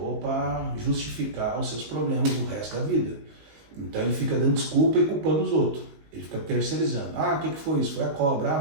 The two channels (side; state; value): left; late; 19 ms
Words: para justificar os seus problemas do resto da vida. Então ele fica dando desculpa e culpando os outros. Ele fica terceirizando. Ah, o que foi isso? Foi a cobra?